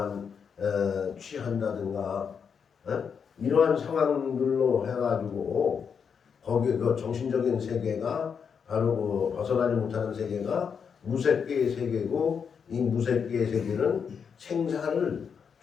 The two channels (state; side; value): quieter; right; 6.7 dB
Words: 취한다든가 이러한 상황들로 해가지고 거기에 그 정신적인 세계가 바로 그 벗어나지 못하는 세계가 무색계의 세계고 이 무색계의 세계는 생사를